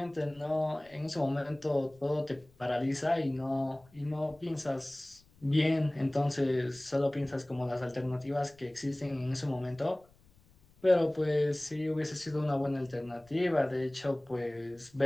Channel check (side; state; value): left; noise; rumble, 29 dB below the sound